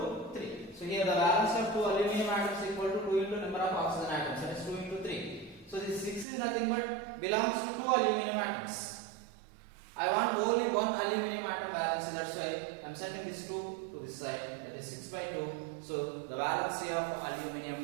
3. So here the valency of 2 aluminum atoms is equal to 2 into number of oxygen atoms, that is 2 into 3. So this 6 is nothing but belongs to 2 aluminum atoms. I want only 1 aluminum atom valency, that's why I am setting this 2 to this side, that is 6 by 2. So the valency of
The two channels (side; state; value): left; drops out; at 6.2 s